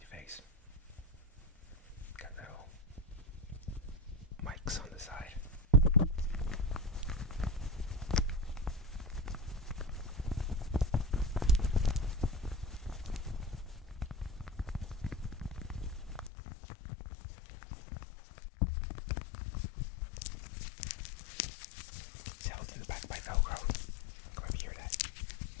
your face. Got little mics on the side. It's held in the back by Velcro. Come over hear that.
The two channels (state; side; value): drops out; right; at 16.3 s